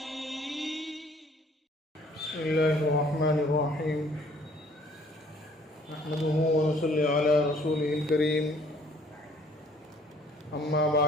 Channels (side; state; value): both; normal; correlation 0.58